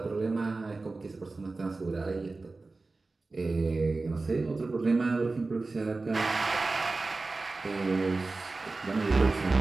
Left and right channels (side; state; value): left; quieter; 3.5 dB